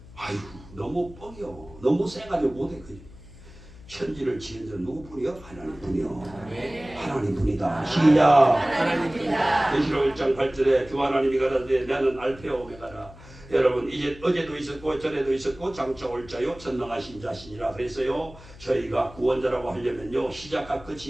아이고 너무 뻥이요. 너무 세가지고 못해. 천지를 지은 자 누구뿐이요? 하나님뿐이요. 하나님뿐이다. 시작. 하나님뿐이다. 계시록 1장 8절에 주 하나님이 가라사대 나는 알파와 오메가라. 여러분 이제 어제도 있었고 전에도 있었고 장차 올 자요 전능하신 자신이라 그랬어요. 저희가 구원자라고 하려면요 시작과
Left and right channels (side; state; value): left; noise; hum, 19 dB below the sound